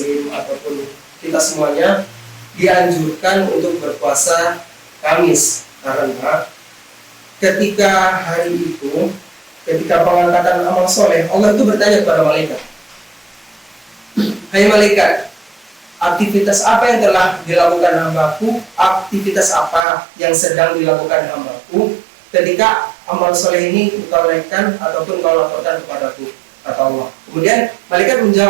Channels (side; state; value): left; drops out; at 19.9 s